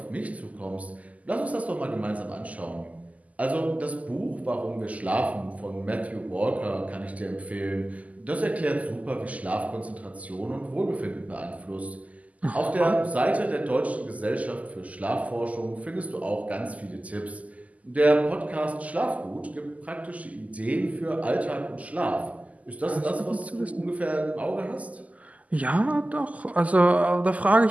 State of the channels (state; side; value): late; left; 0.073 ms